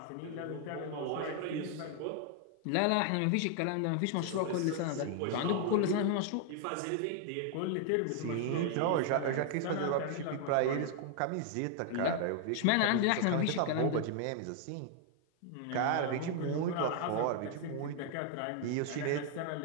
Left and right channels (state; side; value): different; both; correlation 0.00